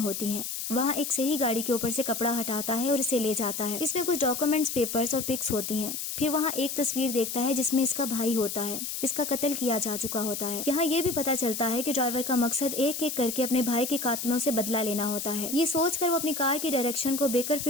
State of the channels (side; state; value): left; noise; hiss, 5 dB below the sound